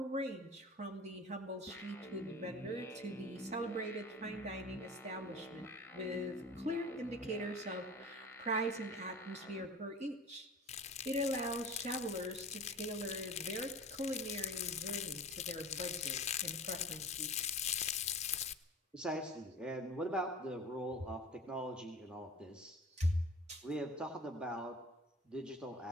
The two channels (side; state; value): both; normal; correlation 0.38